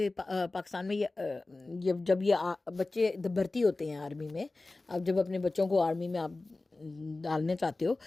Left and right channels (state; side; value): quieter; right; 3.2 dB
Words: پاکستان میں جب یہ بچے بھرتی ہوتے ہیں آرمی میں، آپ جب اپنے بچوں کو آرمی میں آپ ڈالنے چاہتے ہو